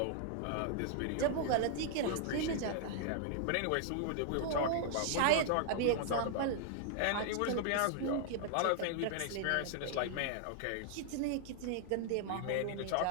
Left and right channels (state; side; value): different; both; correlation -0.01